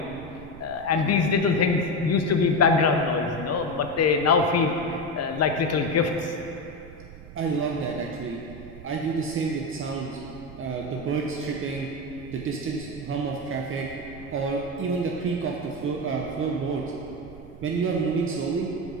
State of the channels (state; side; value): noise; right; rumble, 16 dB below the sound